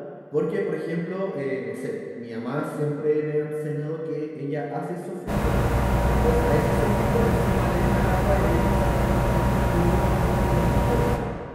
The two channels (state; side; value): identical; both; correlation 1.00